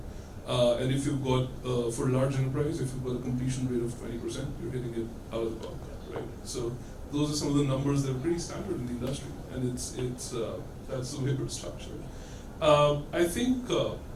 And if you've got, for a large enterprise, if you've got a completion rate of 20%, you're hitting it out of the park, right? So those are some of the numbers that are pretty standard in the industry, and it's that's the way we're structured. I think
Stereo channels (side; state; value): both; identical; correlation 1.00